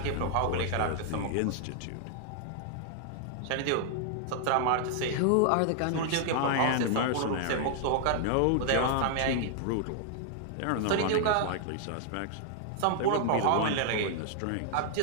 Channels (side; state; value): both; different; correlation 0.00